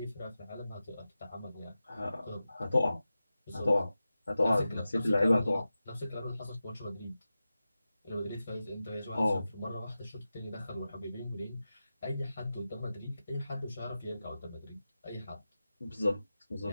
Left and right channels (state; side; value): inverted; both; correlation -0.93